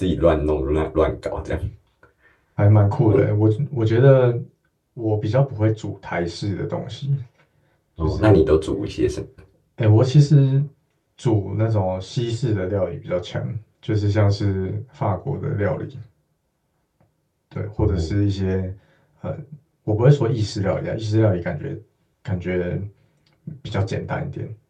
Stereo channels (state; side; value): identical; both; correlation 1.00